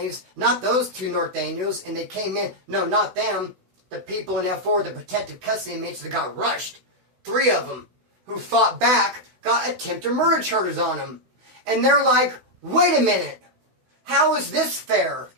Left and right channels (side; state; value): left; late; 16 ms